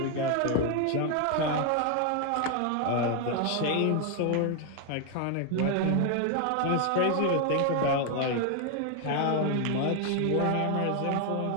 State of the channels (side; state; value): both; different; correlation 0.01